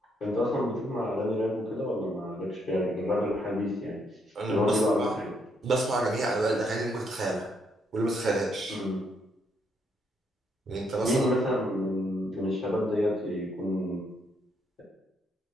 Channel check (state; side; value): normal; both; correlation 0.74